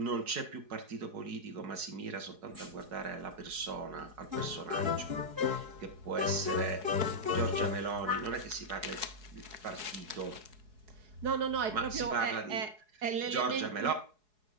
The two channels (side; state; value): left; late; 4.7 ms